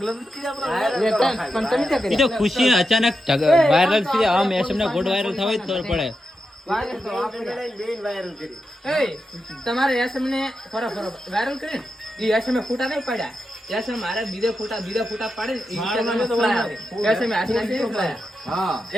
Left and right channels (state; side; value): normal; both; correlation 0.87